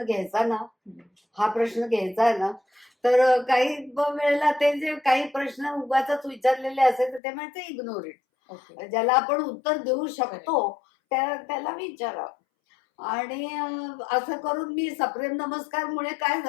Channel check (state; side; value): drops out; right; at 7.2 s